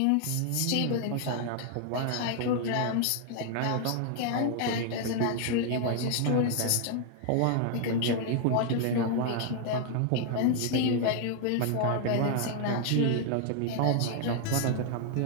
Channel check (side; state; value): both; different; correlation 0.00